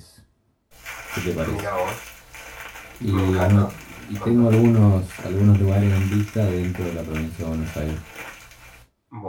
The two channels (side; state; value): both; identical; correlation 1.00